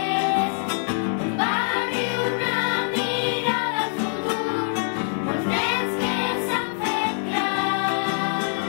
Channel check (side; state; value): right; silent; 62 dB below the other